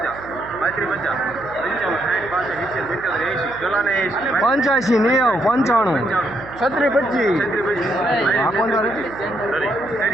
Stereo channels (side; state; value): right; noise; hum, 18 dB below the sound